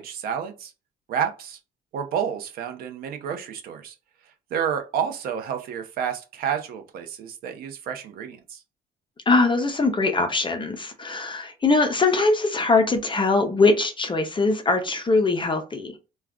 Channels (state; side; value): normal; both; correlation 0.43